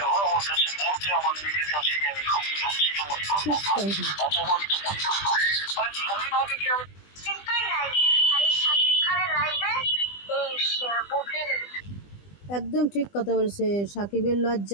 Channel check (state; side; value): late; right; 20 ms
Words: আমার কাছে বলতে আমার নিজের কাছে আমি খুব লজ্জিত মনে করবো, অপমানিত মনে করবো। মানে ধন্যভাবে কি আমি চিন্তাই নাই। আর এই শাকিব খানের লাইভে এই বুবলির একদম ঠিক কথা বলছে। সাকিবের